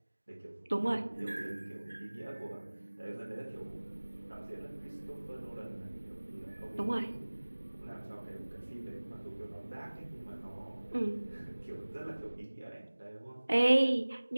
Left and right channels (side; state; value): both; inverted; correlation -1.00